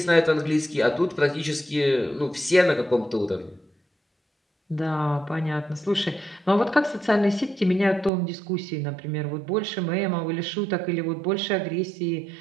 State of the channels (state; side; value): drops out; left; at 8.1 s